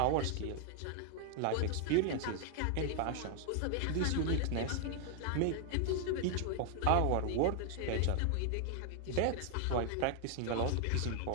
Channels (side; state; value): both; different; correlation 0.00